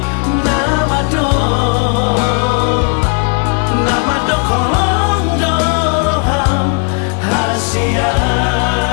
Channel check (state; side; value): quieter; right; 36.6 dB